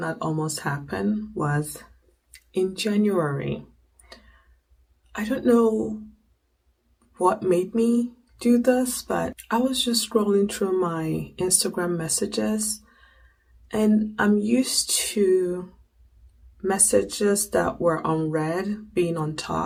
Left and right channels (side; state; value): both; identical; correlation 1.00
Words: almost happen was in January. I don't know what made me do this, but I was just scrolling through my Instagram messages, and I'm used to messages that were unread being on